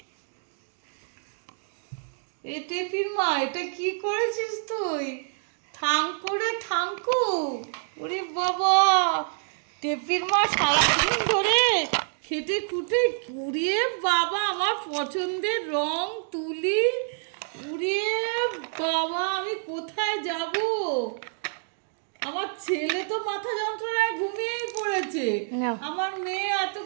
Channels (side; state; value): left; silent; digital silence